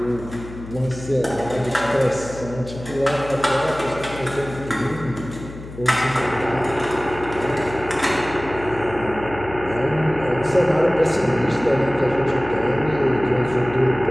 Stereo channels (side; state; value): left; noise; hum, 14 dB below the sound